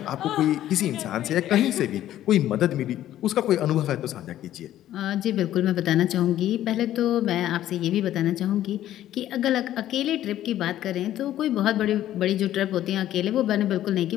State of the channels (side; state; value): right; quieter; 12.7 dB